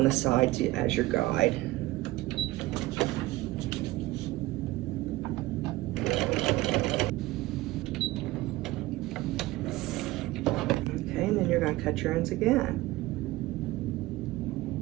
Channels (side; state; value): left; quieter; 18.6 dB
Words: the side as your guide. Okay, and then you're going to cut your ends again.